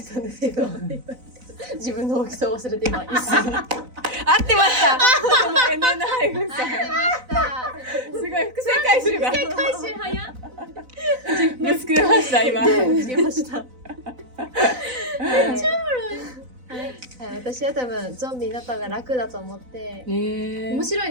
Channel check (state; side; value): late; left; 4.0 ms